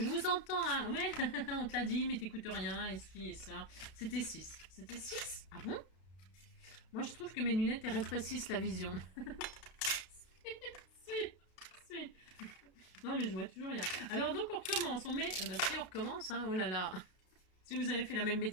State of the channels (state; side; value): late; right; 32 ms